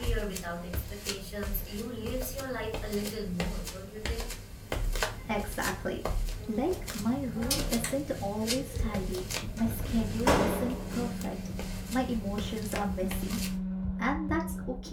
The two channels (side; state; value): both; identical; correlation 1.00